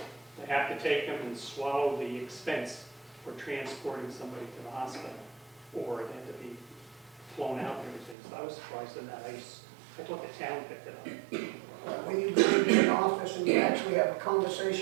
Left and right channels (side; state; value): left; drops out; at 8.2 s